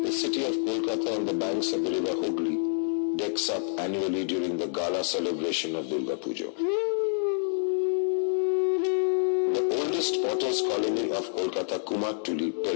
The city of Kolkata on the banks of the river Hooghly decks up annually during the gala celebration of Durga Puja. The oldest potters' colony of Kolkata, Kumartuli,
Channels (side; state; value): right; silent; 60 dB below the other